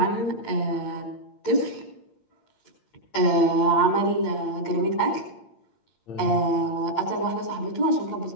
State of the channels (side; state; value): right; late; 8.7 ms